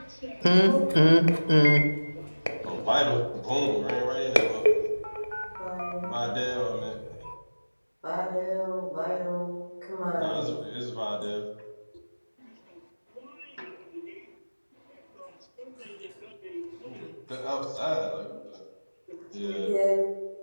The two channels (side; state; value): both; inverted; correlation -1.00